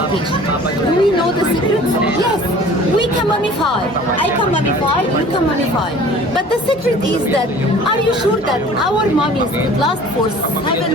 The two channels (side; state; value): both; normal; correlation 0.47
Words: Do we know the secrets? Yes, we can mummify. I can mummify, you can mummify. But the secret is that, are you sure that our mummies could last for